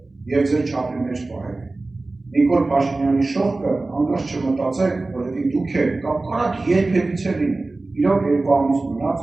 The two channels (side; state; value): left; quieter; 3.2 dB